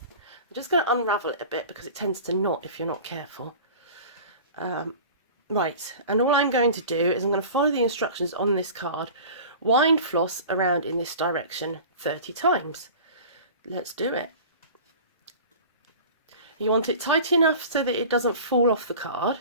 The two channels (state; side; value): inverted; both; correlation -0.39